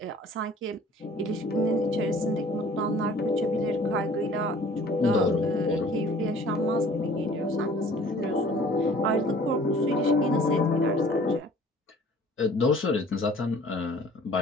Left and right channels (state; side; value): normal; both; correlation 0.51